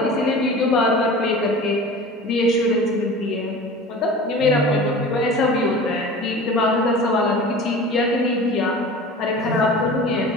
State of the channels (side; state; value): both; normal; correlation 0.38